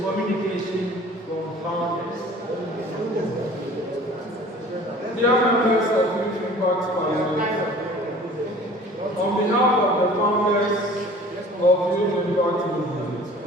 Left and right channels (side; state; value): both; normal; correlation 0.47